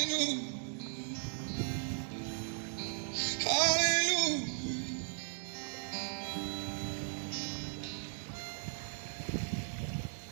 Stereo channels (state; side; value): silent; left; digital silence